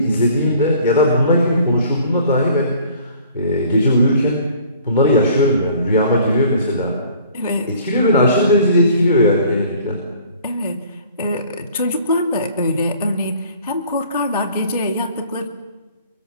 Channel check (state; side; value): inverted; both; correlation -0.53